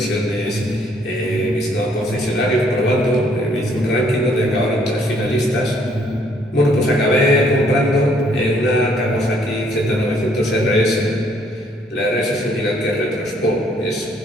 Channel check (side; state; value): both; normal; correlation 0.65